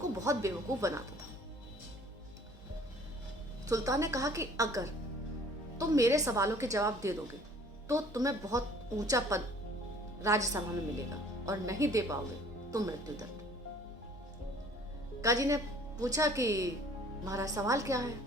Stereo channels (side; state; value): both; normal; correlation 0.53